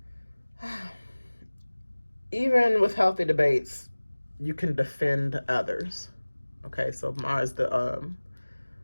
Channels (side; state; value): both; inverted; correlation -1.00